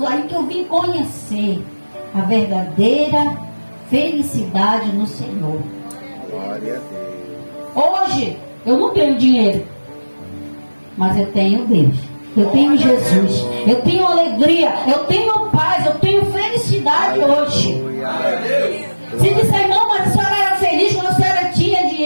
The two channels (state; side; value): inverted; both; correlation -1.00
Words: aí que eu vim conhecer a verdadeira felicidade no Senhor. Glória a Deus. Hoje, eu não tenho dinheiro, mas eu tenho Deus. Eu tenho Jesus. Eu tenho alegria. Eu tenho paz. Eu tenho felicidade hoje. Aleluia. Se disser, irmão, mas a senhora era feliz quando a senhora tinha